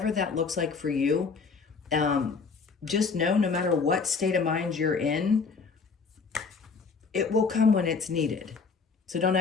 that looks like for you, just know no matter what state of mind you're in, it will come when it's needed. So don't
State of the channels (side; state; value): right; quieter; 4.9 dB